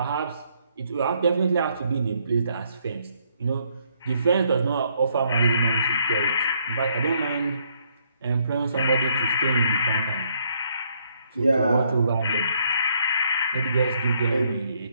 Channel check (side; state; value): both; inverted; correlation -0.71